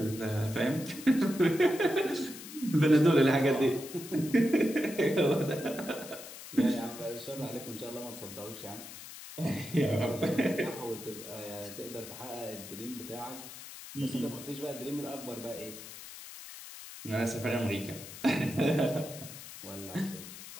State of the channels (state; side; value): noise; left; hiss, 13 dB below the sound